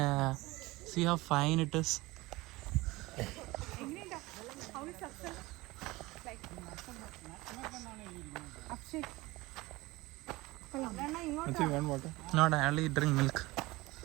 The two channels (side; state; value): left; quieter; 20.9 dB